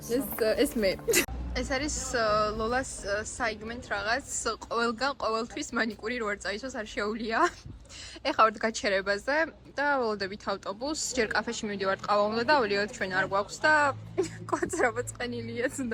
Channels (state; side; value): identical; both; correlation 1.00